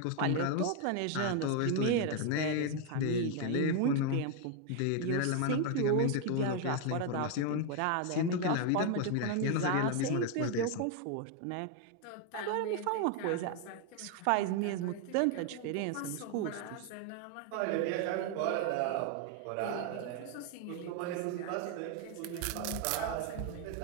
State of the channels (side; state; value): both; different; correlation 0.01